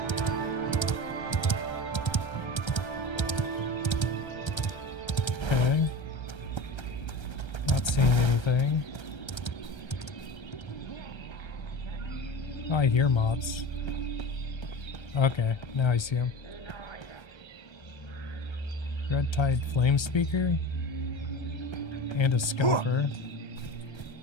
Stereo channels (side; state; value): right; late; 1.3 ms